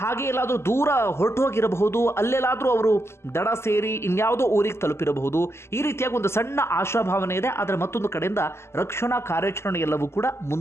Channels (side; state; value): right; late; 0.12 ms